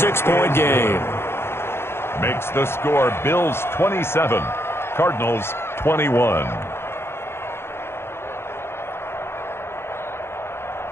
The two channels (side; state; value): right; late; 0.12 ms